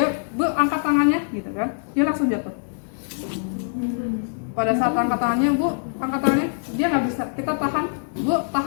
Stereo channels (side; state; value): right; silent; digital silence